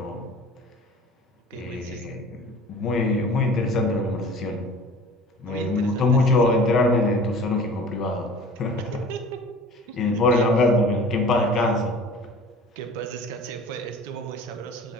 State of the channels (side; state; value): both; normal; correlation 0.43